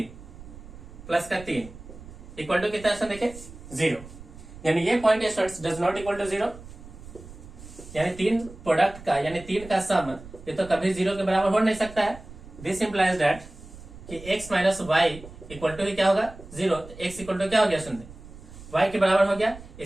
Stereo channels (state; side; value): noise; right; rumble, 17 dB below the sound